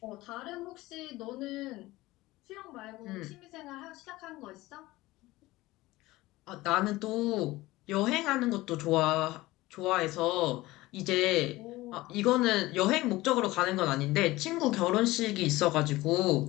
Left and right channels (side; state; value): right; quieter; 18.8 dB